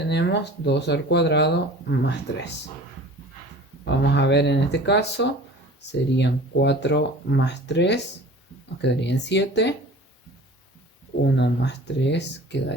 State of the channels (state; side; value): normal; both; correlation 0.42